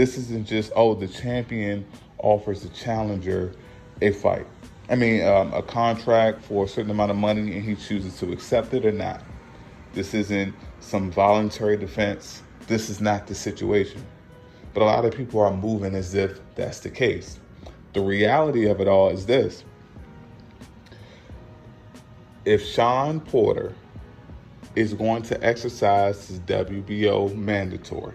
isn't just, oh, the champion offers the challenger a fight. A contract for a certain amount of money and he chooses to accept it or not. This isn't some voluntary defense. This is not the situation. But a lot of people are moving as if that's the case. The reality of it all is this. If Shawn Porter is going to exercise his WBO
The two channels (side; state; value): both; identical; correlation 1.00